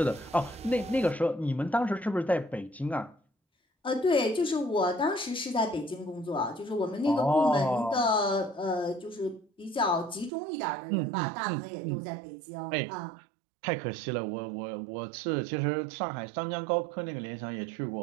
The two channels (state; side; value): drops out; left; at 10.3 s